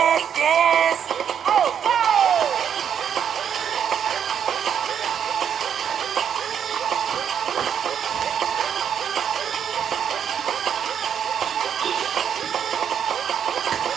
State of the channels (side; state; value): left; quieter; 8.3 dB